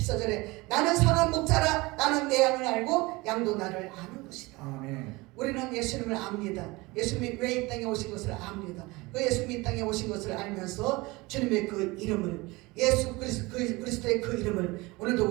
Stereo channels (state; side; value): quieter; left; 22.9 dB